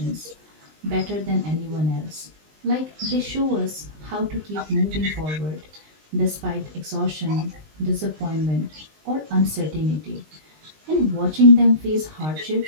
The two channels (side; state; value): left; late; 19 ms